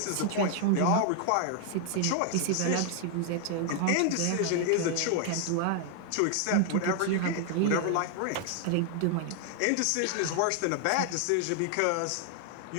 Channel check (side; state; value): both; different; correlation 0.00